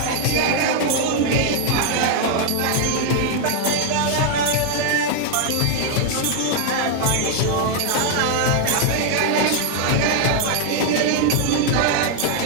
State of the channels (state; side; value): different; both; correlation 0.00